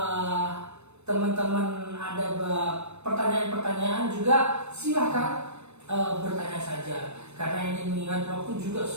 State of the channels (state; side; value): late; left; 0.81 ms